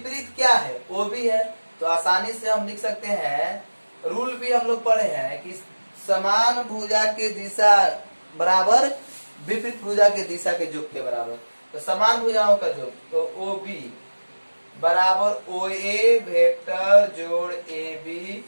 क्या है, ओ बी है। तो आसानी से हम लिख सकते हैं, रूल भी हम लोग पढ़े हैं कि समान भुजा के दिशा बराबर विपरीत भुजा के दिशा के योग के बराबर। तो समान भुजाओं का योग, तो ओ बी बराबर ओ ए वेक्टर जोड़ ए बी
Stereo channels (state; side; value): inverted; both; correlation -1.00